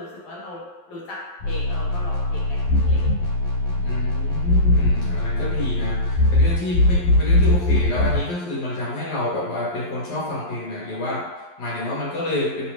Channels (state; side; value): late; right; 11 ms